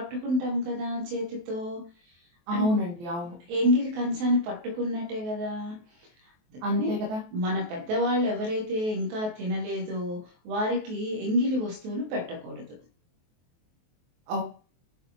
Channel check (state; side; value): late; left; 23 ms